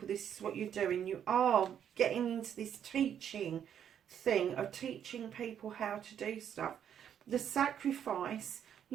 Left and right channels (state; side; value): quieter; left; 9.1 dB